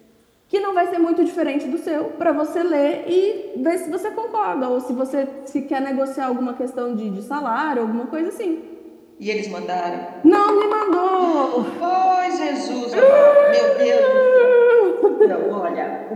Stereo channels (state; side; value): identical; both; correlation 1.00